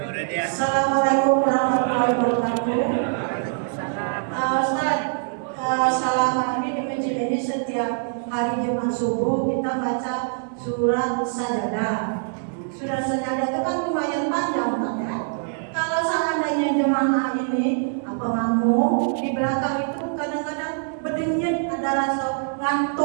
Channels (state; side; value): silent; left; 61 dB below the other